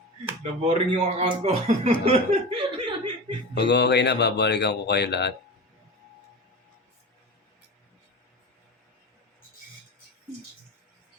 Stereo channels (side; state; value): both; normal; correlation 0.29